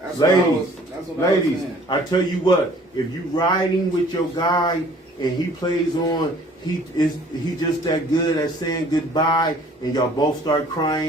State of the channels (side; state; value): both; normal; correlation 0.54